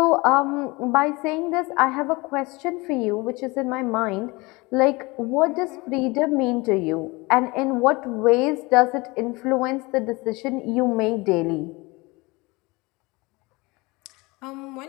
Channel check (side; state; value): right; quieter; 24.3 dB